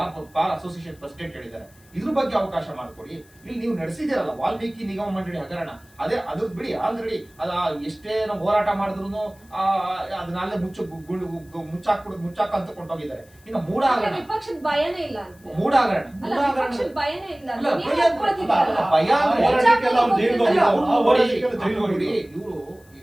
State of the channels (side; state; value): left; noise; hiss, 29 dB below the sound